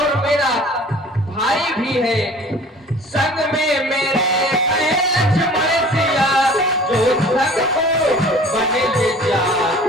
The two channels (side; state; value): both; normal; correlation 0.46